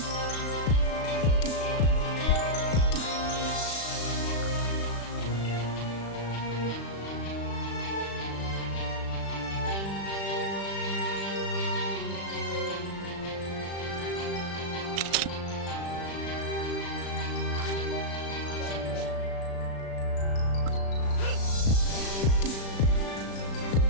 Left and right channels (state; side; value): late; right; 36 ms